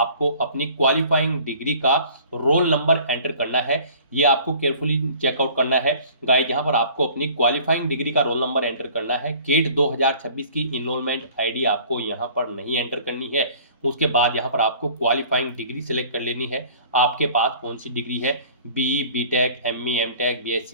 अपनी क्वालिफाइंग डिग्री का रोल नंबर एंटर करना है। ये आपको केयरफुली चेकआउट करना है गाइस। यहाँ पर आपको अपनी क्वालिफाइंग डिग्री का रोल नंबर एंटर करना है। गेट 2026 की इनरोलमेंट आईडी आपको यहाँ पर नहीं एंटर करनी है। उसके बाद यहाँ पर आपको क्वालिफाइंग डिग्री सेलेक्ट कर लेनी है, आपके पास कौन सी डिग्री है, BE, BTech, ME, MTech,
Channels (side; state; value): both; inverted; correlation -0.49